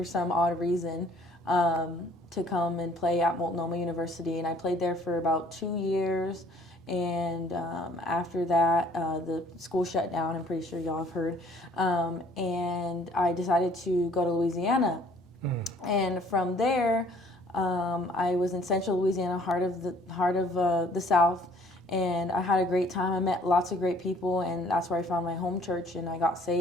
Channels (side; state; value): both; normal; correlation 0.57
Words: some odd reason to come and play at Multnomah University, and I played there for about 2 years. And after that, the school shut down. I'm pretty sure y'all have heard. And I decided to go to Louisiana. And from there, I was in Central Louisiana, heart of the South. And I had a great time. I met lots of great people, and that's where I found my home church, and I got